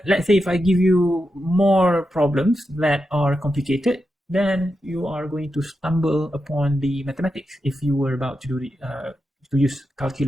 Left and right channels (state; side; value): normal; both; correlation 0.88